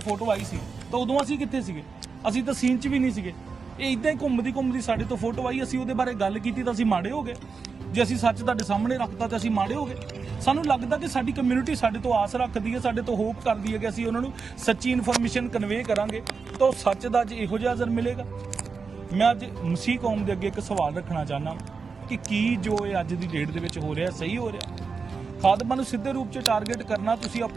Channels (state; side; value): quieter; left; 5.0 dB